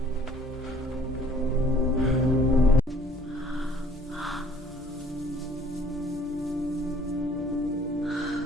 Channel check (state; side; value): normal; both; correlation 0.55